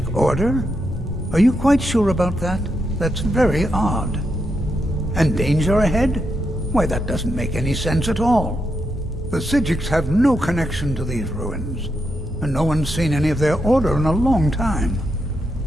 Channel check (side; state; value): both; normal; correlation 0.83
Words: Order? Are you quite sure about that? That's very odd. And danger ahead? Why, that doesn't make any sense at all. The Psijics have no connection to these ruins, and no one's seen any of their order in a long time.